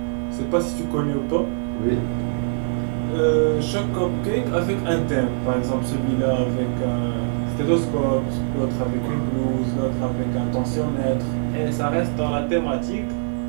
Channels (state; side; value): silent; left; 64 dB below the other